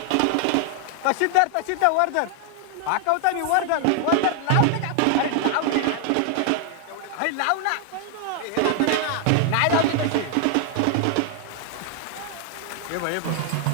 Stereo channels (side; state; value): both; different; correlation 0.00